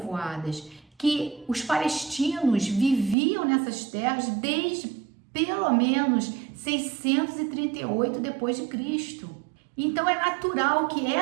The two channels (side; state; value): left; drops out; at 3.2 s